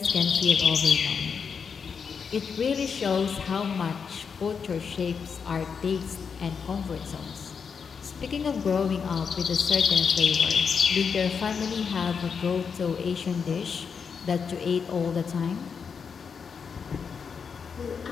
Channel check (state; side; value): quieter; right; 6.1 dB